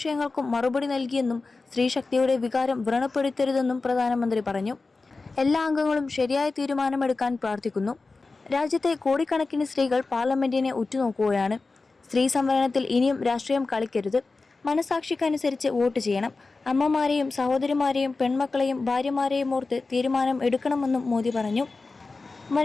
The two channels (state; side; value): quieter; right; 3.8 dB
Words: മറുപടി നൽകിയെന്നും സ്ത്രീശക്തിയുടെ വികാരം വ്രണപ്പെടുത്തരുതെന്നും പ്രധാനമന്ത്രി പറഞ്ഞു. എല്ലാ അംഗങ്ങളും ശരിയായ തീരുമാനമെടുക്കാൻ പ്രാർത്ഥിക്കുന്നു. രാജ്യത്തെ കോടിക്കണക്കിന് സ്ത്രീകൾ പാർലമെന്റിനെ ഉറ്റുനോക്കുകയാണ്. സ്ത്രീ സംവരണത്തിൽ ഇനിയും രാഷ്ട്രീയം കളിക്കരുത്. മനസാക്ഷിക്കനുസരിച്ച് വോട്ട് ചെയ്യണം. അമ്മമാരെയും സഹോദരിമാരെയും പെൺമക്കളെയും ഭാര്യമാരെയും ഓർത്ത് തീരുമാനം എടുക്കണമെന്നും മോദി പറഞ്ഞു.